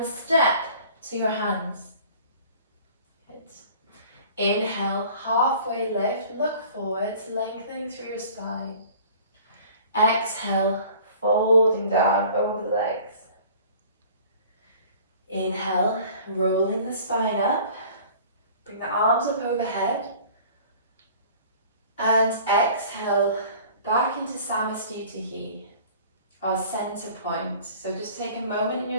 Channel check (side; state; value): both; inverted; correlation -0.47